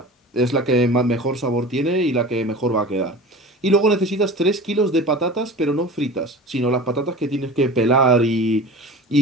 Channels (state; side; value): normal; both; correlation 0.36